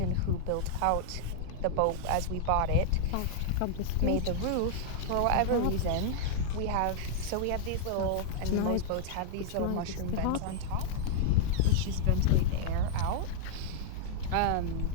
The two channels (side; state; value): both; different; correlation -0.01